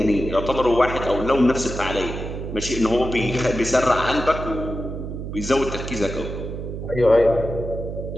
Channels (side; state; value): right; noise; hum, 7 dB below the sound